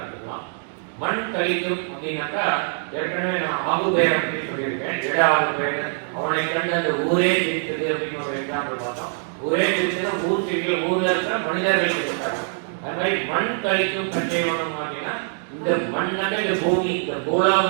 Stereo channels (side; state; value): left; silent; 60 dB below the other